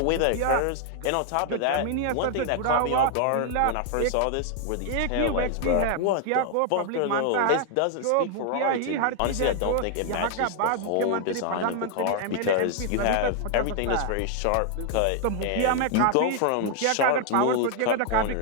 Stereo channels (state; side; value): different; both; correlation 0.00